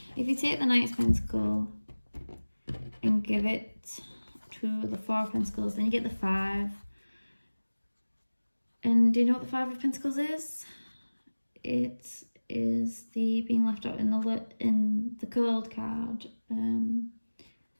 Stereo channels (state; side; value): inverted; both; correlation -1.00